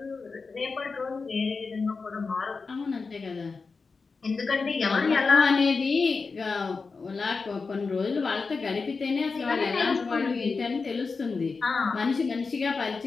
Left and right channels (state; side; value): quieter; right; 4.5 dB